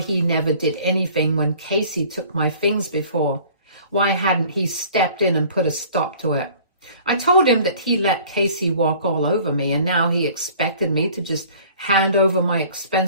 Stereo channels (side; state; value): both; inverted; correlation -0.50